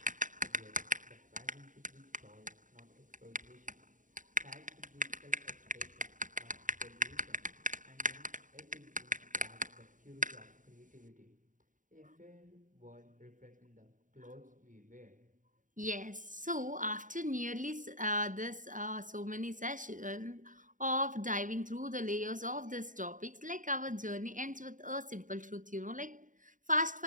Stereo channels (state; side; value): late; left; 0.38 ms